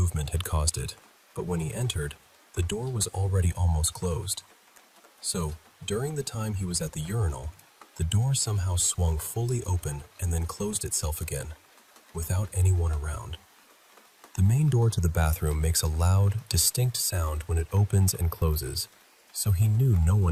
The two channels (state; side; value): identical; both; correlation 1.00